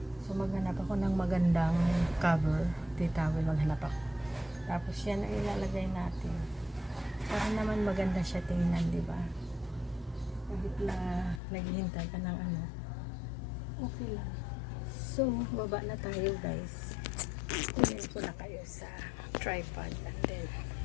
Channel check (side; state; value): right; drops out; at 11.4 s